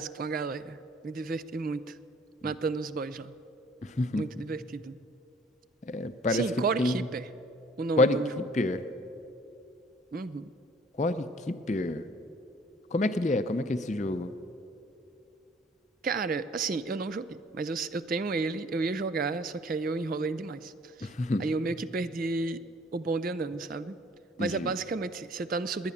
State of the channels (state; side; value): normal; both; correlation 0.56